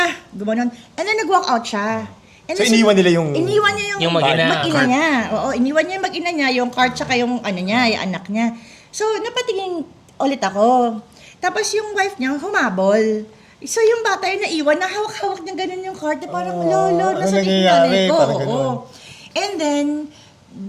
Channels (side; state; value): both; identical; correlation 1.00